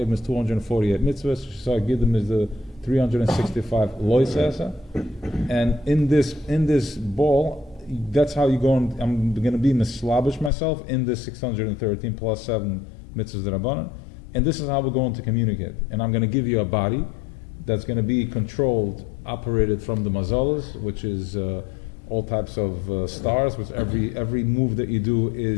is 248 mitzvahs. Shisar Giddim is the 365 loisasa. And in this ball, that's how you go. I'm going to be mislabish myself in this 613 plus 7 mitzvahs Rabbanan. And this is how we're going to communicate. And I'm going to give you a body that's going to be controlled, operated from the mazalas, which is all types of stars, which every move that you do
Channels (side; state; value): right; drops out; at 10.5 s